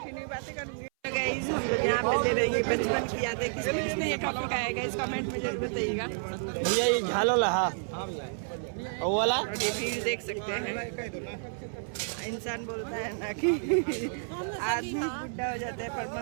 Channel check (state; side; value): silent; left; 58 dB below the other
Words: बातें करूँगी। गाइस, हम लोग यहाँ पे ले रहे हैं बचपन की यादें। किसने किसने ये टॉपिक आया गाइस, कमेंट में जरूर बताइएगा। भैया ये झालो लहा वाला, और ये भीड़ देख सकते हैं। इंसान बोलता है ना कि आदमी बुढ़ा हो जाता है पर